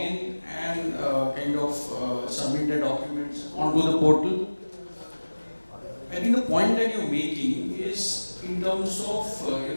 and submit their documents onto the portal. I think the point that you're making is in terms of,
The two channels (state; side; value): inverted; both; correlation -1.00